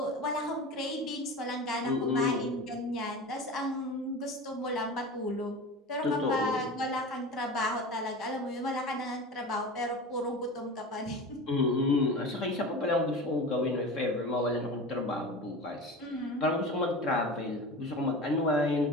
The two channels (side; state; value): both; normal; correlation 0.31